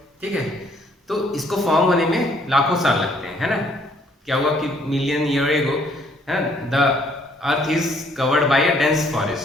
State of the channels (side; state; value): both; normal; correlation 0.64